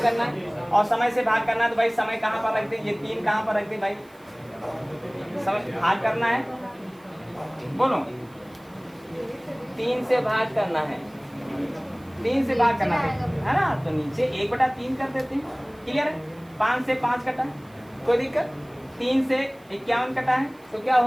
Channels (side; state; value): right; noise; hiss, 30 dB below the sound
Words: करना है। और समय से भाग करना है तो भाई समय कहाँ पर रखते हैं, ये 3 कहाँ पर रखते हैं भाई, समय भाग करना है, बोलो 3 से भाग करना है, 3 से भाग करना है ना। तो नीचे 1/3 कर देते हैं, क्लियर है। 5 से 5 कटा है, कोई दिक्कत, 3 से 51 कटा है तो क्या